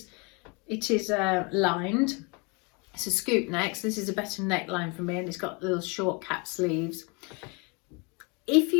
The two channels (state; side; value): quieter; right; 30.7 dB